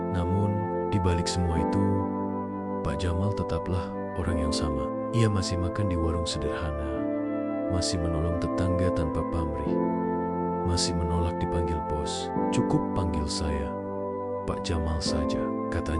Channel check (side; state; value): both; identical; correlation 1.00